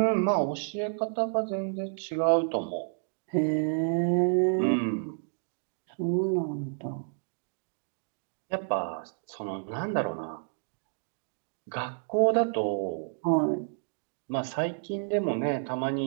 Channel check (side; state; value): left; silent; digital silence